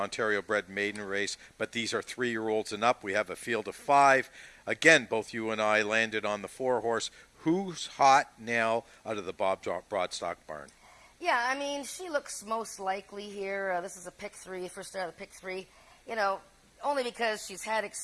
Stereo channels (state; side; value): identical; both; correlation 1.00